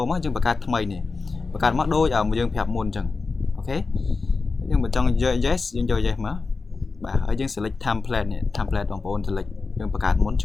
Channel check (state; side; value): quieter; right; 4.2 dB